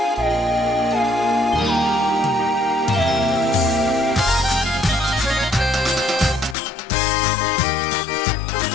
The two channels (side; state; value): right; drops out; at 6.6 s